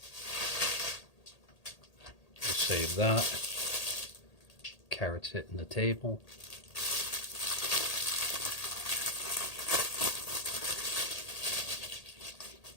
We'll save that. Carrots hitting the table.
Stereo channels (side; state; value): right; late; 1.8 ms